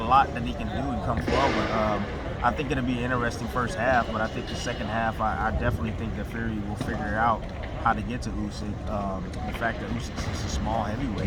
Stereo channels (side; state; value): both; identical; correlation 1.00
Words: that he can do and come forward. I think it'll be an interesting first half, but I think the second half, I definitely think that Fury will figure out how to get to Usyk. The fact that Usyk is a small